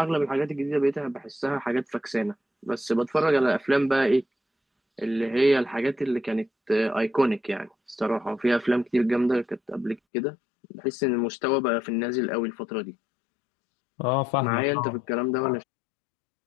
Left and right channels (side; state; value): right; drops out; at 10.0 s